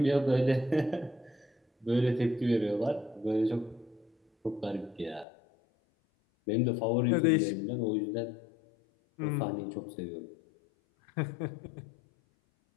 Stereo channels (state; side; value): drops out; right; at 5.2 s